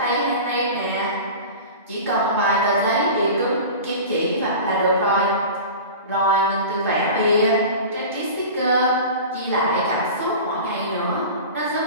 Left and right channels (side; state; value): both; inverted; correlation -0.34